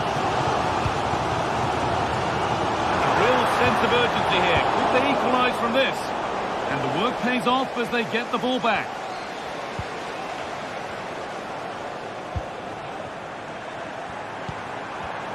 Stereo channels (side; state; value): both; identical; correlation 1.00